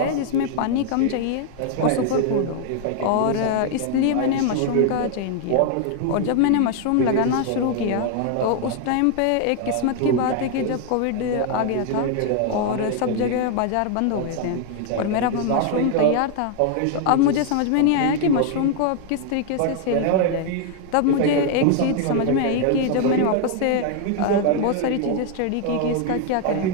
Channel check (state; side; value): different; both; correlation 0.00